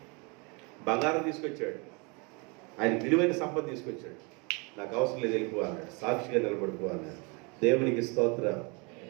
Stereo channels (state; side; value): quieter; left; 30.8 dB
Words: బంగారం తీసుకొచ్చాడు, ఆయన విలువైన సంపద తీసుకొచ్చాడు. నాకు అవసరం లేదు, వెళ్ళిపో అన్నాడు. సాక్షిగా నిలబడిపో అన్నాడు. దేవునికి స్తోత్రం.